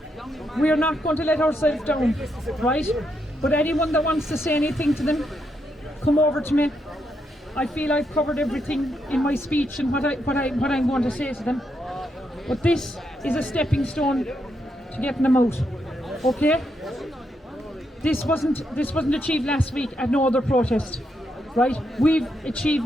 We are not going to let ourselves down, right? But anyone that wants to say anything to them, come over to me. I feel I've covered everything in my speech and what I'm going to say to them. But this is a stepping stone to getting them out. Okay? This wasn't achieved last week at no other protest. Right? We've achieved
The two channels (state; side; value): normal; both; correlation 0.80